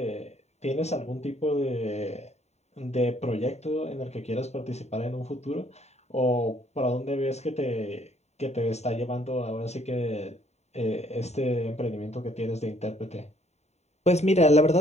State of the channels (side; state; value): right; late; 0.32 ms